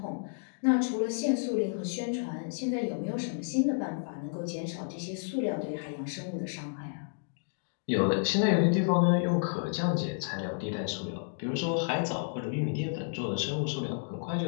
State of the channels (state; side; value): silent; right; digital silence